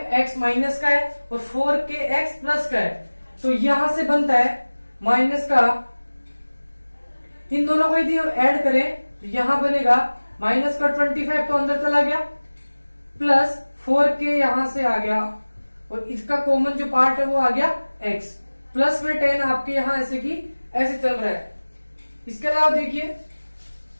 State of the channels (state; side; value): inverted; both; correlation -1.00